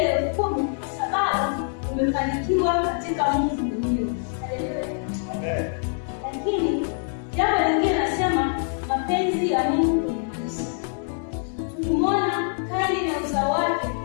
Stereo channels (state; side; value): silent; right; 62 dB below the other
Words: 10 kwa sababu umefanikiwa katika Mungu mwenyewe. Haleluya. Lakini jambo lingine nasema mapenzi ya Mungu kwenye maisha. Tukimwona Kaini na uzao wake